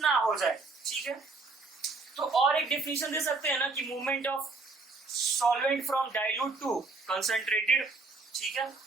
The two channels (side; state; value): left; quieter; 3.9 dB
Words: हो जाए। ठीक है, तो और एक डेफिनेशन दे सकते हैं ना कि movement of solvent from dilute to concentrated. ठीक है,